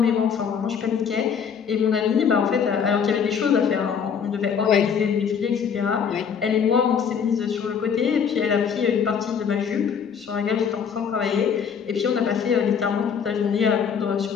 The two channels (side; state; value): right; quieter; 7.0 dB